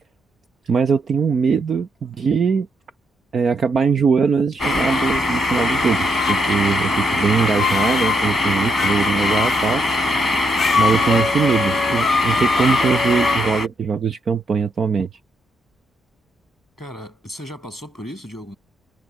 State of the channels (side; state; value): both; normal; correlation 0.78